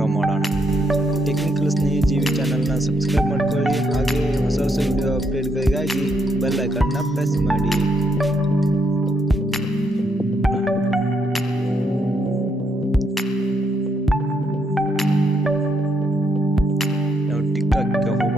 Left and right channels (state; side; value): normal; both; correlation 0.75